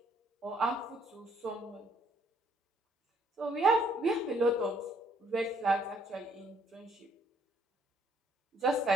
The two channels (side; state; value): both; normal; correlation 0.66